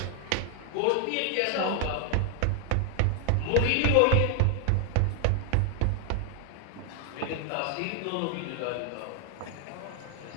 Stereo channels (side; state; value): both; different; correlation 0.00